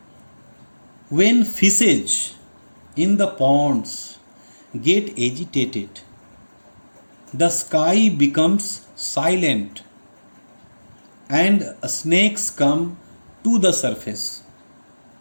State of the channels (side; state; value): both; inverted; correlation -1.00